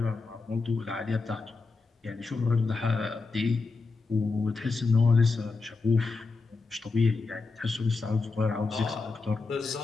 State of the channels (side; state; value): right; quieter; 4.0 dB